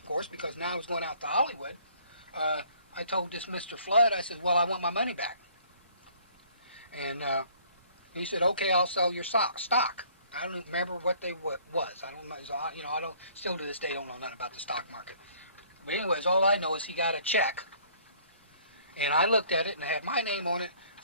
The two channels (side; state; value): both; inverted; correlation -0.58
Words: course, because now I was going out to Hollywood, I told this Mr. Flood, I said, well, I want my money back. And he said, okay, I'll sell your stock. I don't remember what they was. I don't know. You know, I don't, still to this day, don't know nothing about the stock market. But anyways, all I know is he got a check, and I looked at it, and it had my name on it